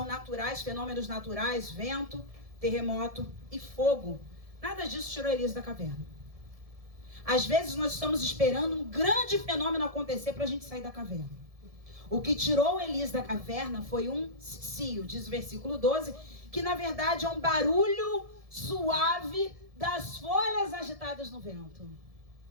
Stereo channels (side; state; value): left; late; 1.7 ms